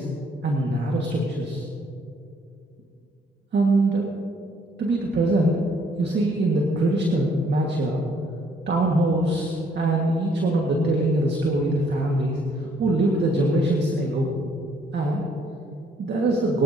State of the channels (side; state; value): both; normal; correlation 0.66